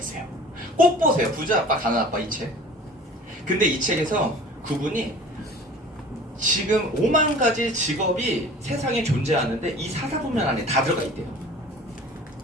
꼭 보세요. 부자 아빠 가난 아빠 이 책. 근데 이 책에서 그분이 지금 5만 가지 직업이 세상에 존재하는데 이 사사분면 안에 다 들어가 있대요.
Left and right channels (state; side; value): normal; both; correlation 0.44